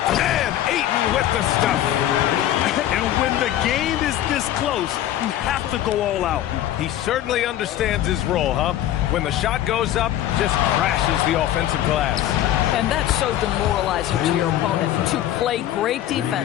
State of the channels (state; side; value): quieter; right; 12.5 dB